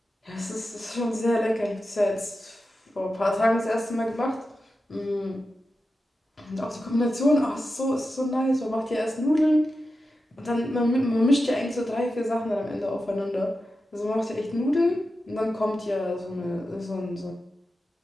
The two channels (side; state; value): both; normal; correlation 0.91